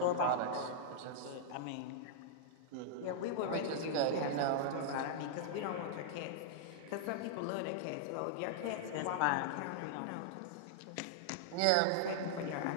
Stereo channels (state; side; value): different; both; correlation -0.01